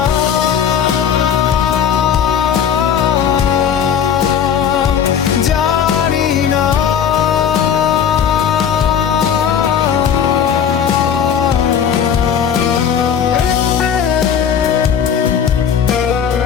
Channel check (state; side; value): quieter; right; 8.1 dB